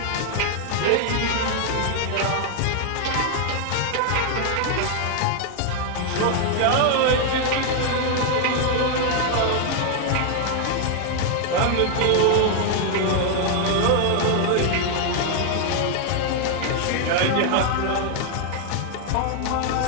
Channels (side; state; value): both; different; correlation 0.00